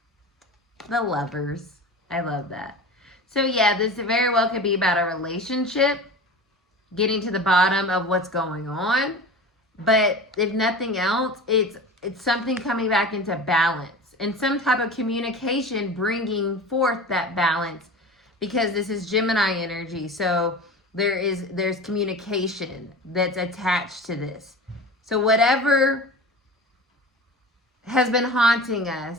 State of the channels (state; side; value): normal; both; correlation 0.33